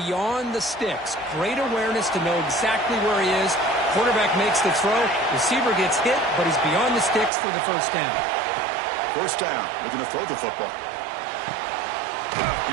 the sticks. Great awareness to know exactly where he is. Quarterback makes the throw. Receiver gets hit, but he's beyond the sticks for the first down. First down. Looking to throw the football.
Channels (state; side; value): drops out; left; at 7.3 s